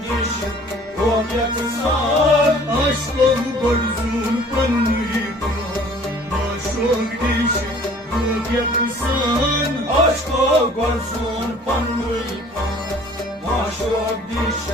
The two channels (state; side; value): normal; both; correlation 0.52